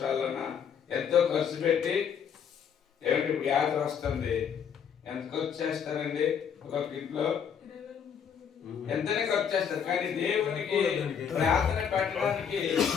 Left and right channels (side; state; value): right; quieter; 7.6 dB